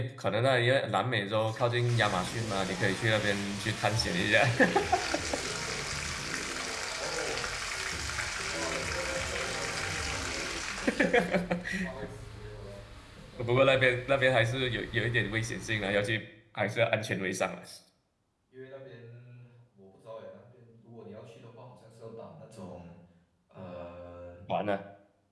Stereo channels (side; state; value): both; identical; correlation 1.00